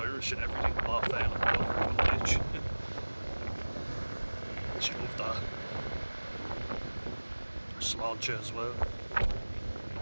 and everything. Laugh fail and called her a good bitch. She loved that. Sláinte as well.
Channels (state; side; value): inverted; both; correlation -1.00